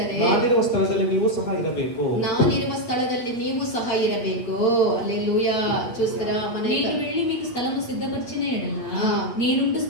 ನಾನಿರುವ ಸ್ಥಳದಲ್ಲಿ ನೀವು ಸಹ ಇರಬೇಕು. హల్లెలూయా. చూస్తారా? నేను వెళ్ళి మీకు స్థలము సిద్ధపరిచిన ఎడల నేనుండు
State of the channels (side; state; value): right; late; 8.6 ms